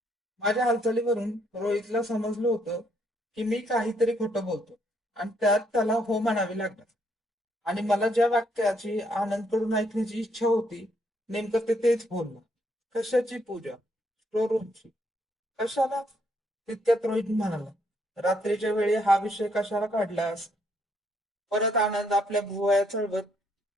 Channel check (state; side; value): normal; both; correlation 0.71